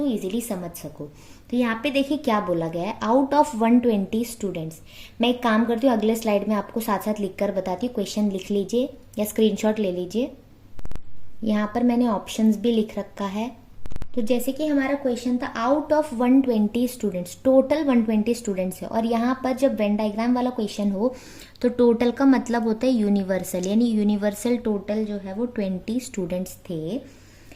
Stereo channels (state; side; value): identical; both; correlation 1.00